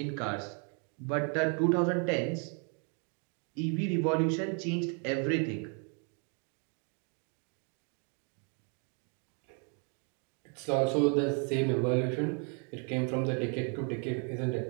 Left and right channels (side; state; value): left; quieter; 39.0 dB